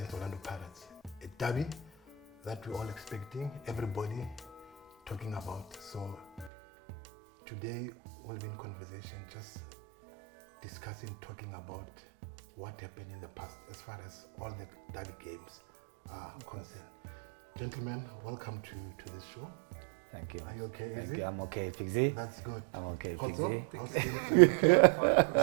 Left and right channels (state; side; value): drops out; left; at 6.5 s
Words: Orlando Pirates. A derby that we're all expecting, everybody talking about. So today we'll be in conversation just discussing, talking about what happened in the past as far as all the derby games are concerned. Gentlemen, welcome to this show. Thank you. Are you okay, Izzy? I'm okay, Fixie. That's good. I'm okay, Kgotso, Fixie. how's it? Are you okay?